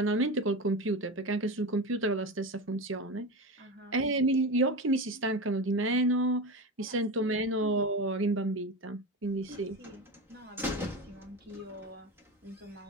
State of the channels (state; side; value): normal; both; correlation 0.23